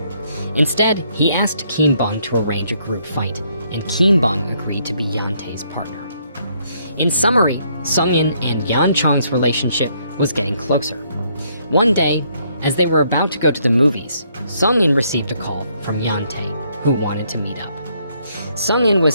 Instead, he asked Kim Bung to arrange a group fight, and Kim Bung agreed to be Hyeon Tae's partner. In summary, Seung In and Yeon Chong's relationship was getting closer. One day, as they were about to go to the movies, Seung In received a call from Hyeon Tae, who wanted to meet up. Seung In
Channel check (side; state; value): both; inverted; correlation -0.70